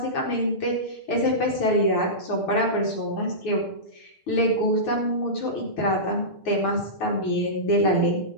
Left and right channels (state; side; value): late; right; 6.6 ms